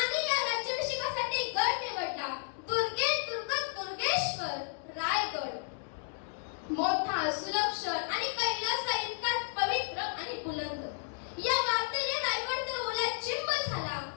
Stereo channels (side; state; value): right; silent; digital silence